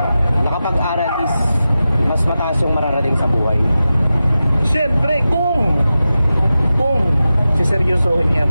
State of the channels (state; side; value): inverted; both; correlation -0.93